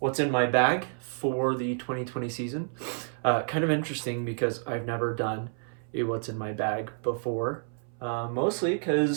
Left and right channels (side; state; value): left; silent; 58 dB below the other